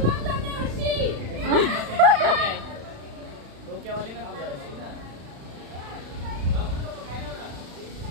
डोक्यावाली ना तुझ्या.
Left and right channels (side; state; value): left; late; 36 ms